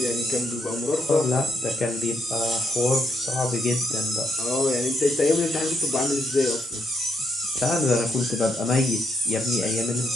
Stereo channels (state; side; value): normal; both; correlation 0.77